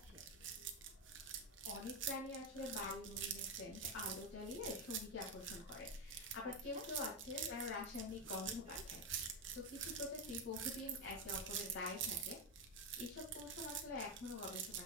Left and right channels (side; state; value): both; normal; correlation 0.08